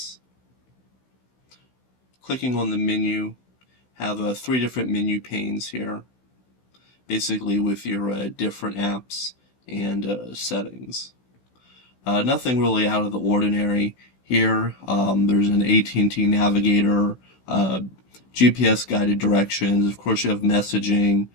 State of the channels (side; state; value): right; late; 16 ms